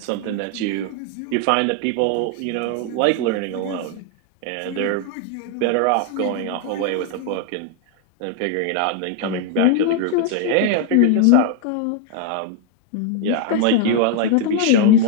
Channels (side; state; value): both; different; correlation 0.00